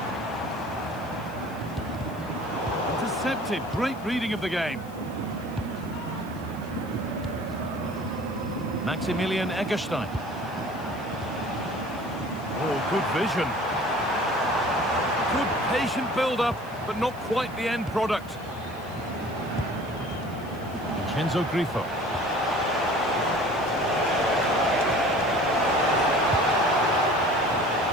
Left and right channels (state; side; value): noise; left; hiss, 24 dB below the sound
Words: Intercepted, great reading of the game. Maximilian Eggestein. Oh, good vision. Good patient build-up, but not quite the end product. Vincenzo Grifo.